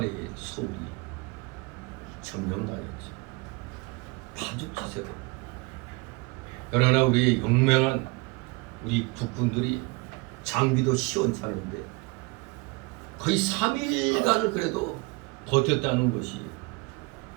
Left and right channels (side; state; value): left; quieter; 26.5 dB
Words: 서울이 점령당했죠. 파죽지세로. 그러나 우리 용맹한 우리 국군들이 장비도 시원찮은데 거의 3일간을 그래도 버텼다는 것이